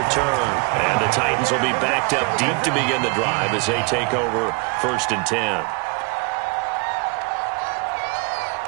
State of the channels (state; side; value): quieter; left; 30.3 dB